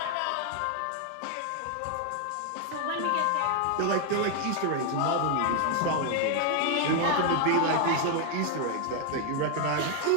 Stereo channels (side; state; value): both; different; correlation 0.00